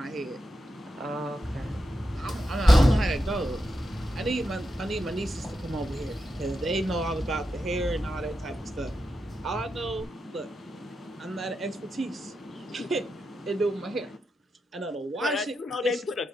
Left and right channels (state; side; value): normal; both; correlation 0.87